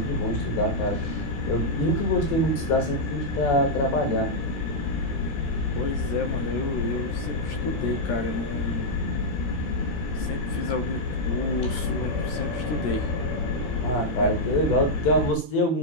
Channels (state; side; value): late; right; 13 ms